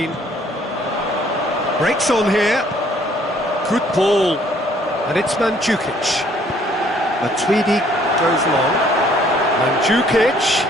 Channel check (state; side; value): normal; both; correlation 0.61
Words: Breaks on here. Good ball. And it's Mandzukic. Matuidi goes long. Mandzukic.